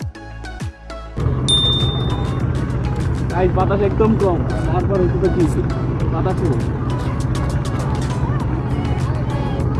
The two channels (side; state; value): both; identical; correlation 1.00